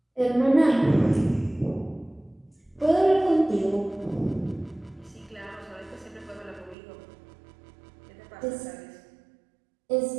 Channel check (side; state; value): left; drops out; at 6.8 s